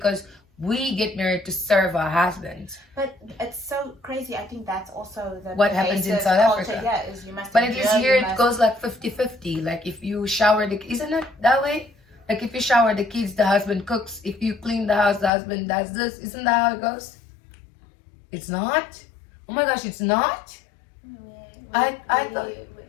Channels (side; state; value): right; drops out; at 15.3 s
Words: we get married to serve our husbands. But it's so crazy. I think that's also what happens in South Africa. Yeah, is you must. But at least here it goes like 50-50. Like if you shower isn't it that way? Like if you shower the kids, the husband cooks. If you clean the house, the husband does this. Isn't that how it goes? It's not? Oh my gosh, it's not?